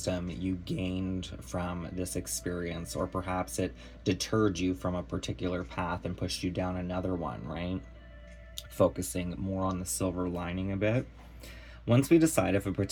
you gained from this experience, or perhaps it deterred you from a particular path and pushed you down another one, right? Focusing more on the silver lining a bit. Once we decide if a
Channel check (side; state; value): both; identical; correlation 1.00